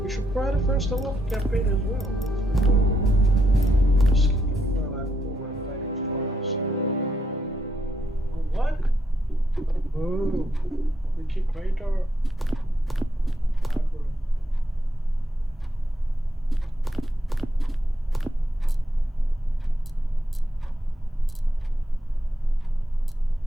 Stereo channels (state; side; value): normal; both; correlation 0.80